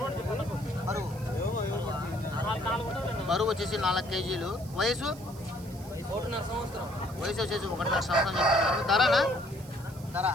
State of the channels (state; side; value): noise; right; hiss, 21 dB below the sound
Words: బరువు వచ్చేసి 4 కేజీలు. వయసు వచ్చేసి 1.5 సంవత్సరం చెప్తున్నారు. ధరనా?